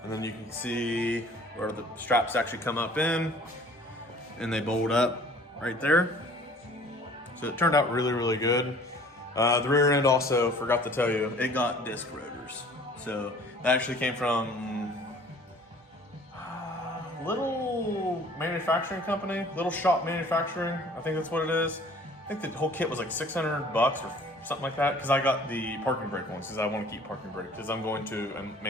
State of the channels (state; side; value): normal; both; correlation 0.51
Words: And then you can see where the straps actually come up in and they bolt up right there. So it turned out really, really good. The rear end also, forgot to tell you, it got disc rotors. So that actually came from little manufacturing company, Little Shop Manufacturing. I think that's what it is. I think the whole kit was like $600 or something like that, because I got the parking brake ones because I want to keep parking brake because I'm going to a